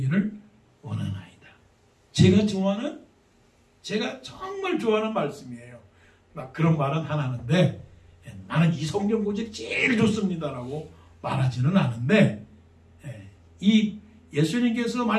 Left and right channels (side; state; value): both; identical; correlation 1.00